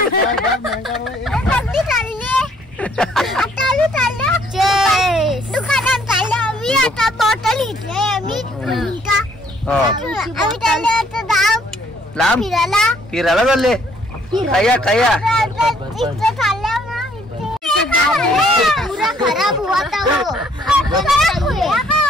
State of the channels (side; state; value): both; normal; correlation 0.64